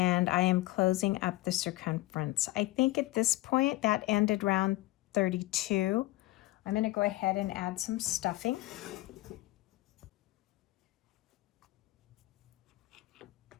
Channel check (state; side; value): quieter; right; 18.3 dB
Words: I am closing up the circumference. I think at this point that ended round 32. I'm going to go ahead and add some stuffing.